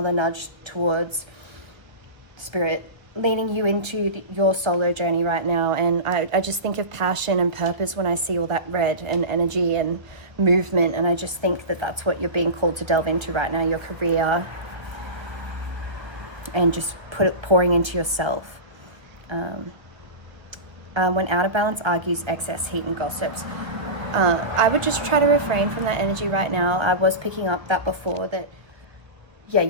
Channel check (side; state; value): left; late; 1.2 ms